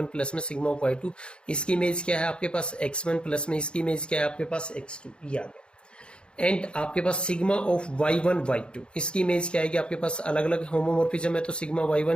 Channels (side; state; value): right; late; 0.054 ms